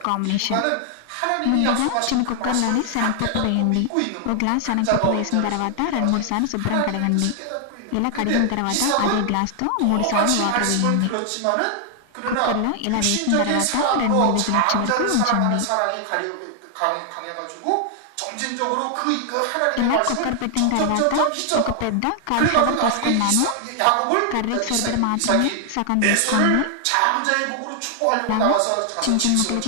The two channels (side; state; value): both; different; correlation 0.00